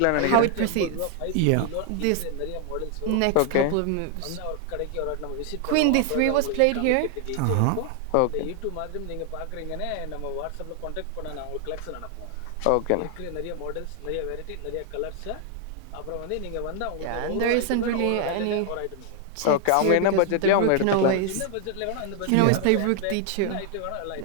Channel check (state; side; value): different; both; correlation 0.00